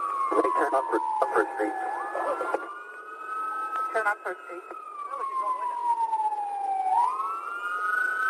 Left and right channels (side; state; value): both; identical; correlation 1.00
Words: Ready, turn on First Street. Turn on First Street.